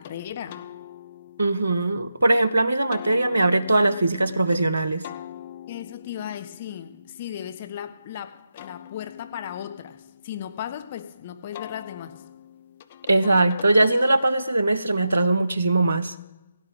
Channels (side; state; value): both; inverted; correlation -0.88